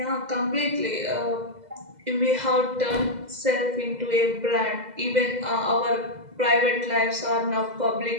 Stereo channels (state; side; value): late; left; 2.0 ms